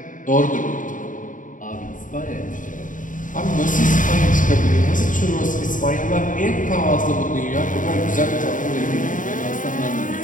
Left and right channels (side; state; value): right; late; 0.38 ms